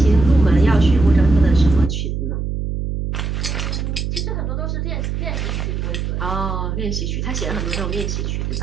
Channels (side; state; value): right; noise; hum, 3 dB below the sound